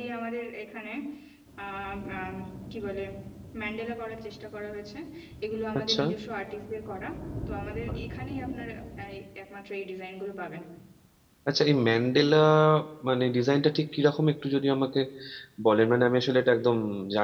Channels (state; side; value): identical; both; correlation 1.00